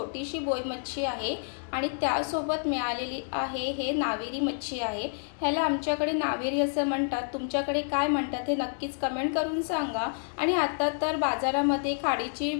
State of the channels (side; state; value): right; silent; digital silence